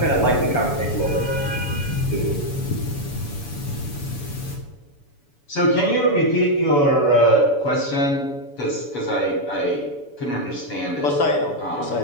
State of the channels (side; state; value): right; late; 7.0 ms